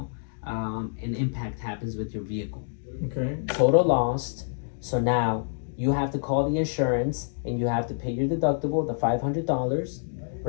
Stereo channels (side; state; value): right; silent; digital silence